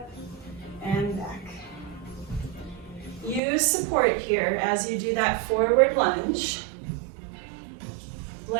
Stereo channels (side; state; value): left; drops out; at 3.4 s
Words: and back. Use support here as you do that forward lunge.